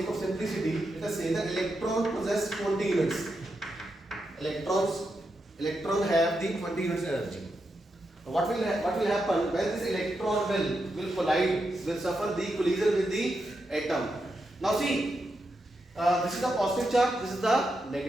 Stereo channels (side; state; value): both; normal; correlation 0.85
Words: of simplicity, let us say the electron possess 20 units. Electron have the 20 units energy. What will happen when this electron will collide, will suffer the collision with the atom? Now see, this is the positive charge, this is the